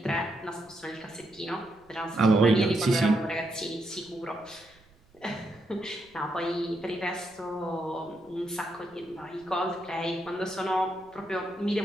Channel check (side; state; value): right; noise; rumble, 30 dB below the sound